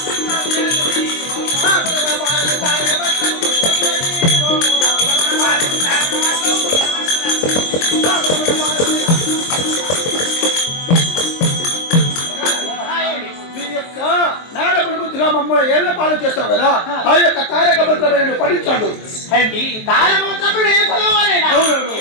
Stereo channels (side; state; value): right; late; 23 ms